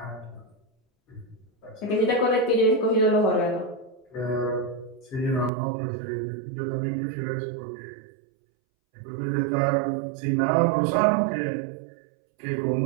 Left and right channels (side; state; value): left; drops out; at 5.5 s